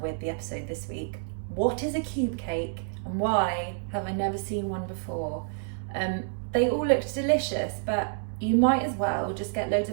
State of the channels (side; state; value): left; silent; digital silence